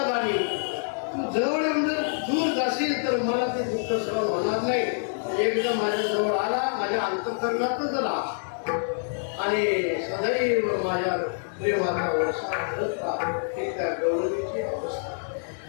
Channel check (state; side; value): silent; right; digital silence